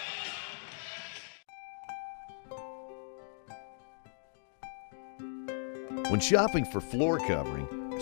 When shopping for floor covering,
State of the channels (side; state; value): right; silent; digital silence